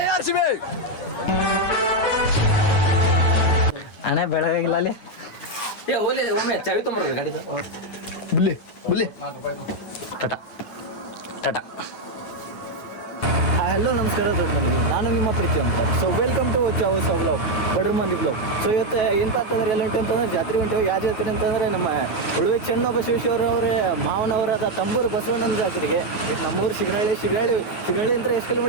RCB. ಅಣ್ಣ ಬೆಳಗಾಗಿಲ್ಲ ಅಲ್ಲಿ. ಒಮ್ಮೆ ಚಾವಿ ತೊಂಬರ್ರಿ ಗಾಡಿದ. ಬುಲ್ಲಿ ಬುಲ್ಲಿ ಟಾಟಾ ಟಾಟಾ. ಹಲೋ ನಮಸ್ಕಾರ ದೊಡ್ಡಮನಿಗೆ, ನಾನು ನಿಮ್ಮ ಪ್ರೀತಿ ಅಂತ. ಸೊ ವೆಲ್ಕಮ್ ಟು ಚಾವಸ್ ವ್ಲಾಗ್, ಬಡ್ರ ಮಂದಿ ವ್ಲಾಗ್. ಸೊ ಇವತ್ತು ಏನಪ್ಪ ಅಂತಂದ್ರೆ ಎಲ್ಲ ಉಂಟು ಅಂತಂದ್ರೆ ಜಾತ್ರೆ ಉಂಟು. ಯಾವ ಜಾತ್ರೆ ಅಂತಂದರೆ ನಮ್ಮ ಉಳುವೆ ಚೆನ್ನಬಸವೇಶ್ವರವ್ರ ಮಾವನವರಾದ ತಂಬೂರು ಬಸವಣ್ಣನ ಜಾತ್ರೆಗೆ. ನಮ್ಮೂರು ಶಿಗನಹಳ್ಳಿ ಅಂದ್ರೆ ಎಷ್ಟು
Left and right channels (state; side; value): late; right; 9.6 ms